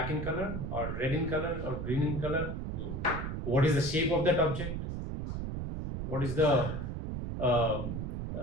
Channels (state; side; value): noise; right; rumble, 4 dB below the sound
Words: in color or red in color or green in color, what is the shape of that object, what is the